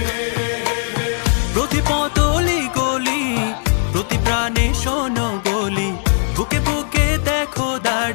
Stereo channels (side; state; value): right; silent; digital silence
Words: প্রতি পতলি গলি, প্রতি প্রাণে শোনো বলি, বুকে বুকে দেখো